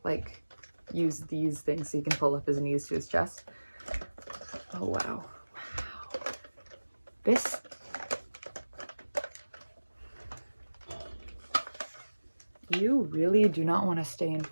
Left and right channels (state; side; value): inverted; both; correlation -1.00